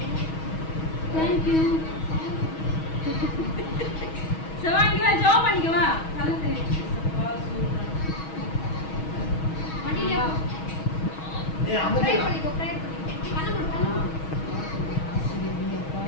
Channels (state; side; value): late; right; 6.3 ms